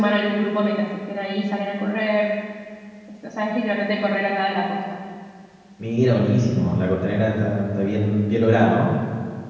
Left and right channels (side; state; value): both; identical; correlation 1.00